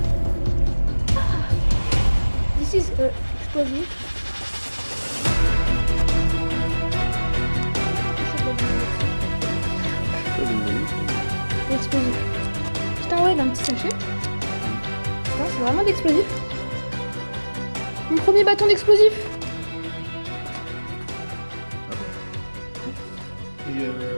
This is explosive. Explosif. Putain, ouais, d'un petit sachet. Putain, c'est vraiment d'explosif. Mon premier bâton d'explosif. pris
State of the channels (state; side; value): inverted; both; correlation -1.00